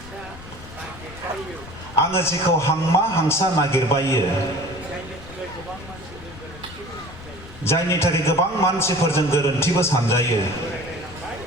आङो जेखौ हांमा हांसा नागिरबायो जायनि थाखाय गोबां मानसिफोरजों गोरोन्थिबो सानजायो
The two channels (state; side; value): noise; left; rumble, 16 dB below the sound